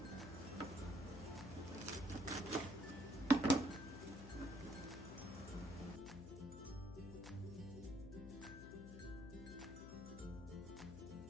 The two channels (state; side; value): noise; left; hum, 10 dB below the sound